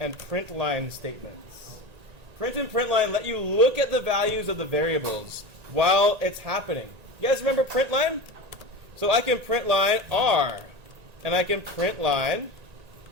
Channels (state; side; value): late; left; 1.9 ms